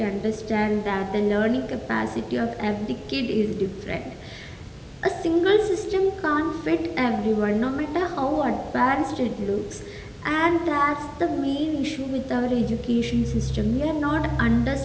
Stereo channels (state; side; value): identical; both; correlation 1.00